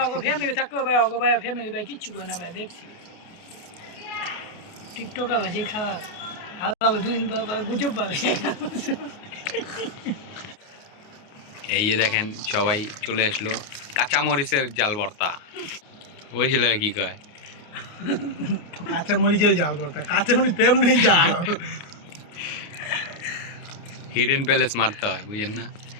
ওগো ফ্যামিলি থাকো ভাই ওগো ভাই ফ্যামিলি ভাই কিচ্ছু করে না ভাই দেখছি টিকটক আছে খাওয়া আলাদা দুদিন পর গুজব পাবে। এই যে দেখেন সবাই চলে আসলো, কাঁচা মরিচের জাল ভর্তা। ওই ছেলে কি কয়, কাঁচা মরিচের জাল ভর্তা। কাঁচা মরিচ তেমনি জাল, হিডেন প্যালেস মারতে হয়, বুঝেন না?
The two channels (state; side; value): late; right; 29 ms